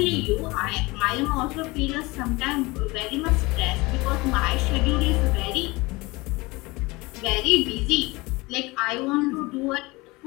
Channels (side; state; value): right; quieter; 23.3 dB